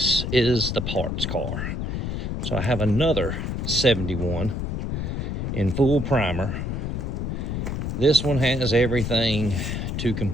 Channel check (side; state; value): left; noise; rumble, 2 dB below the sound